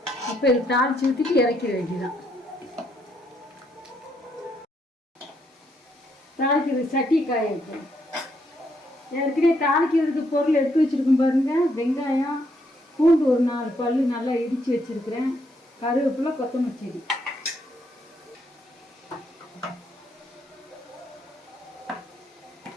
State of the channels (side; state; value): both; normal; correlation 0.74